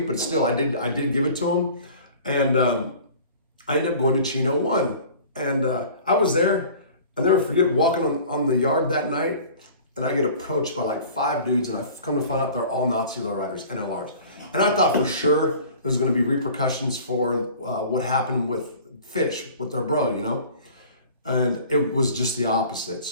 but still, I did give it to him. And I ended up going to Chino 1. And I was there. I'll never forget walking on the yard that night, and I get approached by like 5 dudes, and I've come to find out they're all Nazi lowriders, NLRs. And I thought for sure there's gonna be repercussions for what happened with Fish, with their bro, And it was just the opposite.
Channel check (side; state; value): both; inverted; correlation -0.45